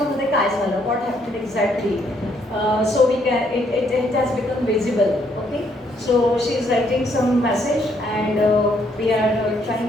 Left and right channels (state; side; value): normal; both; correlation 0.70